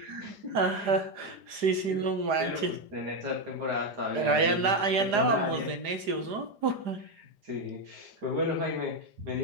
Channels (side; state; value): left; late; 4.9 ms